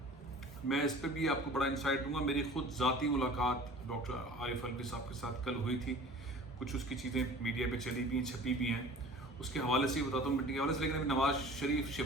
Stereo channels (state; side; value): normal; both; correlation 0.43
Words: मैं इस पर भी आपको बड़ा इंसाइट दूंगा। मेरी खुद ज़ाती मुलाकात डॉक्टर आरिफ अलवी साहब के साथ कल हुई थी। कुछ उसकी चीज़ें मीडिया पे चली भी हैं, छपी भी हैं, उसके हवाले से ही बताता हूँ मीटिंग के हवाले से। लेकिन अभी नवाज शरीफ,